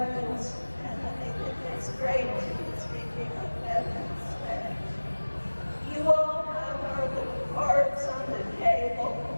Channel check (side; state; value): both; inverted; correlation -1.00